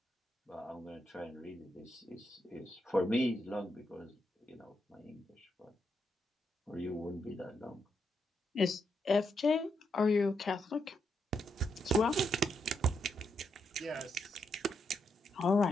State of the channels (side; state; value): both; normal; correlation 0.81